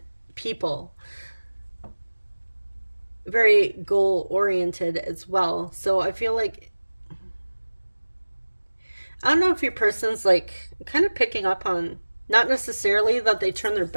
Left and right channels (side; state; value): both; inverted; correlation -1.00